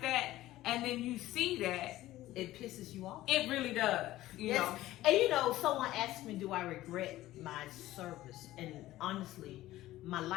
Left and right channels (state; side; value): quieter; right; 15.7 dB